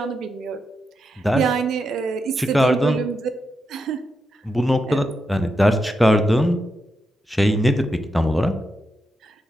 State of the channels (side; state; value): both; normal; correlation 0.85